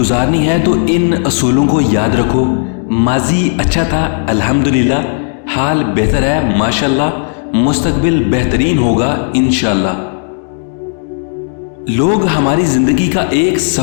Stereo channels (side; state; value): right; silent; digital silence